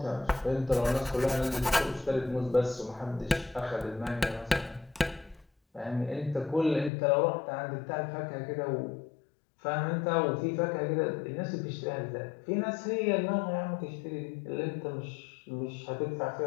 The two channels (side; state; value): right; drops out; at 6.9 s